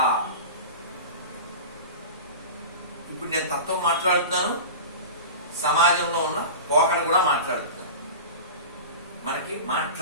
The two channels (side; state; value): both; inverted; correlation -0.31